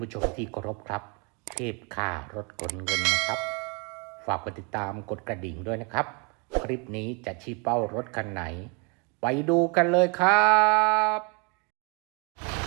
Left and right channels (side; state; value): left; quieter; 33.2 dB